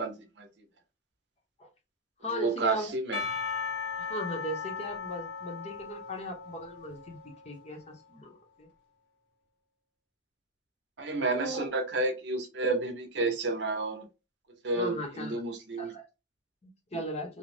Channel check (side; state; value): both; normal; correlation -0.01